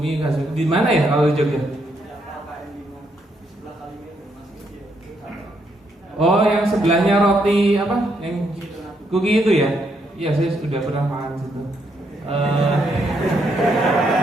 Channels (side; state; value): both; normal; correlation 0.75